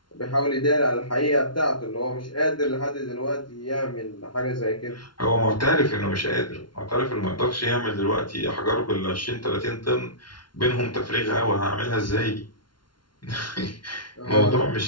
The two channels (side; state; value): right; late; 0.72 ms